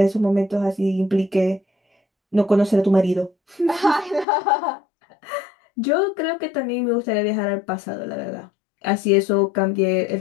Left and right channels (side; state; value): right; drops out; at 4.2 s